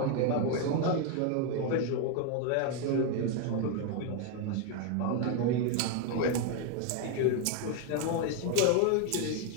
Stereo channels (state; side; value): different; both; correlation 0.01